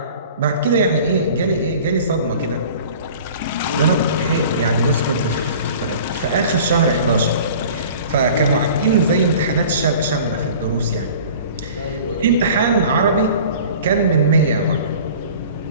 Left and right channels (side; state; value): both; inverted; correlation -0.44